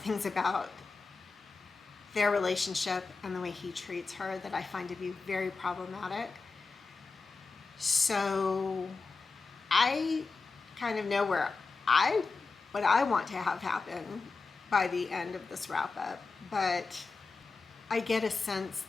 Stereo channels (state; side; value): quieter; right; 4.2 dB